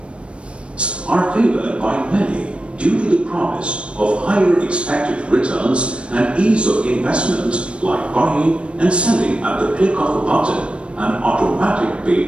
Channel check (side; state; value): left; late; 0.059 ms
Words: Are favored by many due to the promise of higher expected returns and ease of investment, like buying and selling at the click of a button and automatic